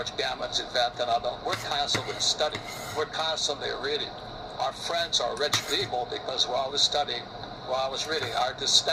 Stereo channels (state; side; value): identical; both; correlation 1.00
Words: Gammon's event and all, we're constantly studying. We're constantly reading. Our friends are rich people because we're always studying, we're always reading. Our